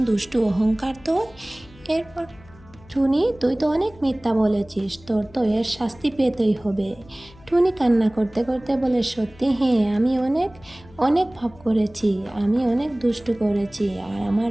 দুষ্টু অহংকার তোর। এরপর, টুনি, তুই তো অনেক মিথ্যা বলেছিস, তোর তো এর শাস্তি পেতেই হবে। টুনি কান্না করতে করতে বলে, সত্যি, হ্যাঁ, আমি অনেক অনেক পাপ করেছি, আমি অনেক দুষ্টু করেছি, আর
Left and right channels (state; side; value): noise; left; hum, 24 dB below the sound